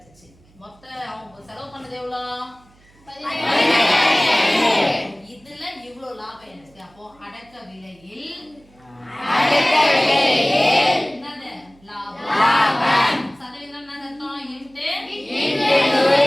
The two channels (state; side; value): noise; right; hum, 29 dB below the sound